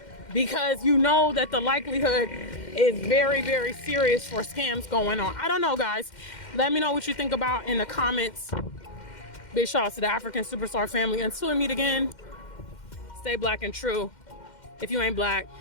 because you know that the likelihood is very, very serious for scams going on. I don't know, guys. Let me know what you think about in the comments. Big shout out to the African Superstar family. Until we meet again, stay black and true. If you ain't black,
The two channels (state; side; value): late; right; 2.1 ms